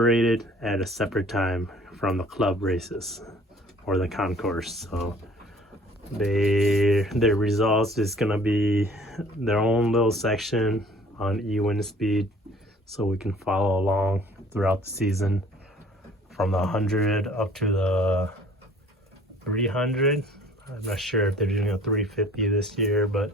at a separate time from the club races or the concourse. So their results is gonna be their own little section on E-wind speed, so we can follow along throughout the season from the 100 up to the 300. I'm not sure if they're doing a 350 this year,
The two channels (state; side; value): normal; both; correlation 0.53